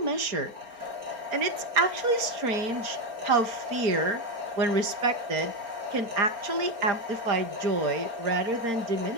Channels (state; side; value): late; left; 4.3 ms